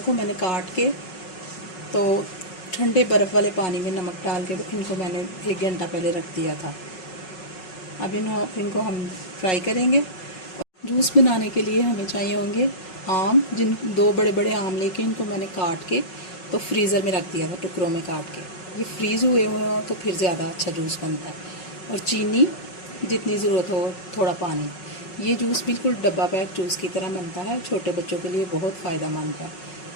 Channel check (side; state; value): right; late; 5.4 ms